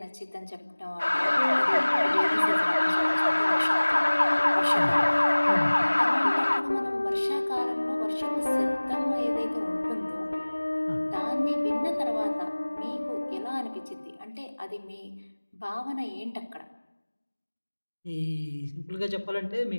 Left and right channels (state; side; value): inverted; both; correlation -1.00